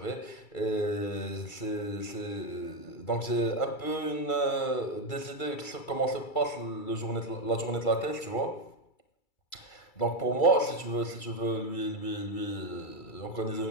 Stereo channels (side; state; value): right; late; 2.3 ms